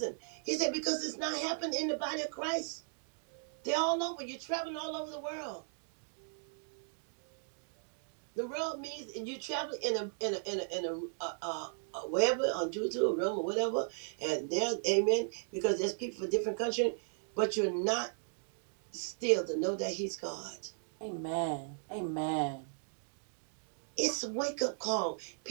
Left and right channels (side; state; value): left; silent; digital silence